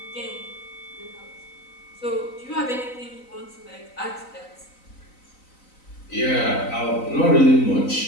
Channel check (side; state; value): right; late; 3.9 ms